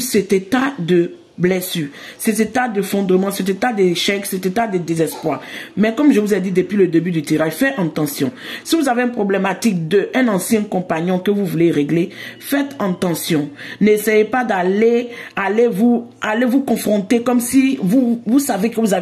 état de blessure, cet état de fondement, cet état d'échec, cet état de désespoir. Mais comme je vous ai dit depuis le début du tirage, faites attention. Si vous avez une problématique d'un ancien compagnon que vous voulez régler, faites attention. N'essayez pas d'aller vous confronter comme si vous savez que vous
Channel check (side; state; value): both; identical; correlation 1.00